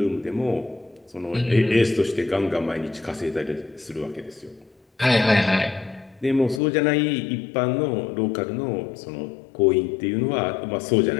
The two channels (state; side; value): drops out; right; at 6.6 s